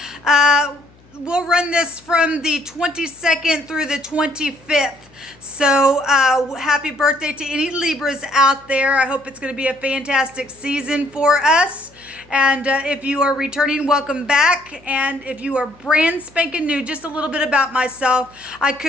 We'll run this from the 22nd through the 25th. So happy birthday to any Libras out there. I hope it's going to be a fantastic season for us. And if you are returning, welcome back. And if you are brand spanking new, just a little bit about myself. I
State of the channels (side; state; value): left; noise; hum, 29 dB below the sound